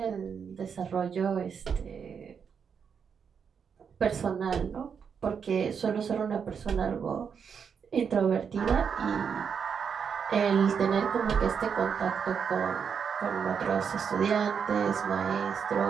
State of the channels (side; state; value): left; quieter; 6.8 dB